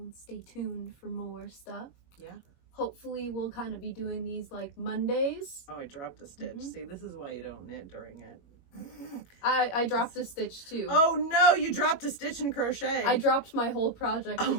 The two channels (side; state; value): right; late; 21 ms